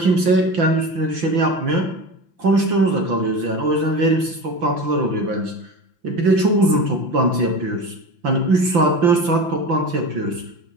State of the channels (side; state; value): left; late; 5.9 ms